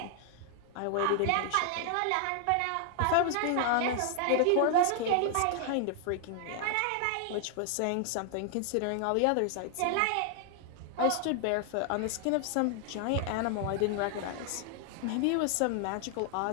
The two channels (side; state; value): both; different; correlation 0.00